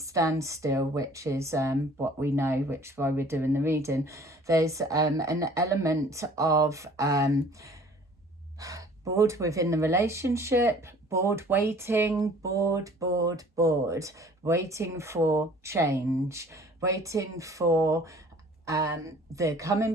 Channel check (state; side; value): normal; both; correlation 0.51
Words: which is what we know, which is why we're doing the reading. There's an element of bored within the relationship, bored waiting, bored, waiting for change, waiting for the